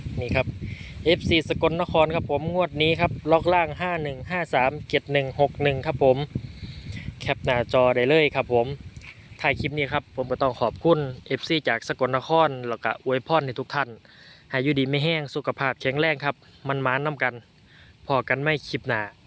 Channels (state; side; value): identical; both; correlation 1.00